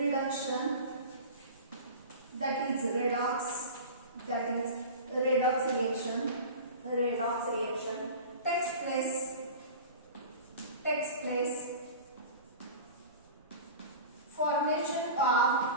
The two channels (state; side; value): inverted; both; correlation -0.34